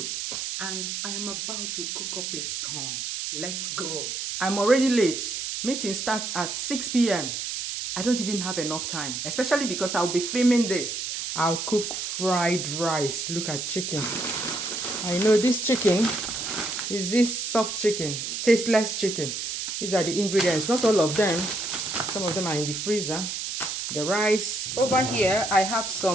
and I am about to cook up a storm. Let's go. I'm already late. Meeting starts at 6 p.m. I don't even have enough time, especially because I'll be filming this. I'll cook fried rice. Look at chicken. I know this chicken is this soft chicken, tasteless chicken. These are the ingredients, not all of them. Some of them are in the freezer. The rice. Over here, I have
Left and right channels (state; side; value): noise; right; hiss, 4 dB below the sound